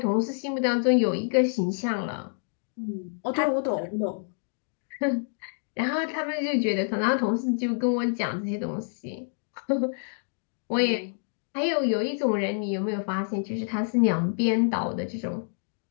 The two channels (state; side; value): silent; right; digital silence